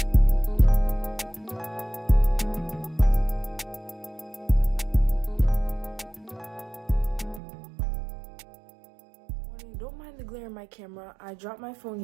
Don't mind the glare in my camera. I dropped my phone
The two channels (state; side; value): drops out; left; at 7.4 s